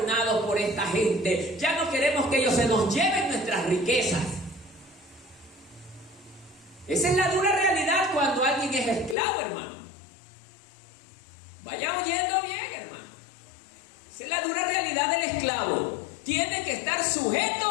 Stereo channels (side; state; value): right; drops out; at 9.2 s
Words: por esta gente. Ya no queremos que ellos se nos lleven nuestras riquezas. Esa es la dura realidad cuando alguien es esclavo, hermano. Vaya oyendo bien, hermano. Esa es la dura realidad del esclavo. Tiene que estar